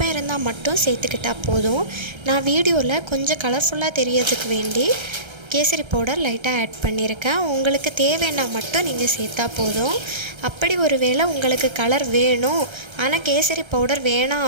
இருந்தால் மட்டும் சேர்த்துக்கிட்டால் போதும். நான் வீடியோவில் கொஞ்சம் கலர்ஃபுல்லாக தெரியறதுக்கு வேண்டி கேசரி பவுடர் லைட்டாக ஆட் பண்ணியிருக்கேன். உங்களுக்கு தேவைன்னா மட்டும் நீங்கள் சேர்த்தா போதும். அப்படி ஒரு வேளை உங்களுக்கு கலர் வேணும் ஆனால் கேசரி பவுடர் வேணாம்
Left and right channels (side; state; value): left; late; 1.3 ms